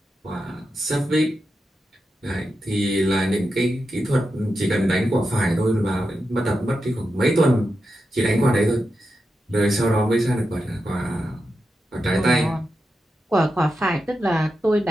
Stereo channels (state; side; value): normal; both; correlation 0.88